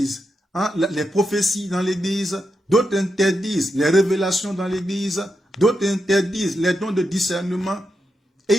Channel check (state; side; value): normal; both; correlation 0.86